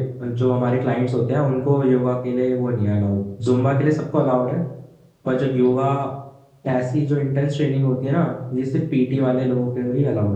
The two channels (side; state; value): both; identical; correlation 1.00